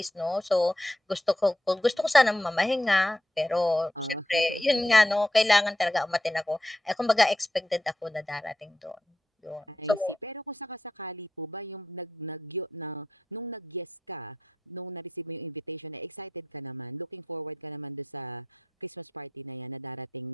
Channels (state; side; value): normal; both; correlation 0.85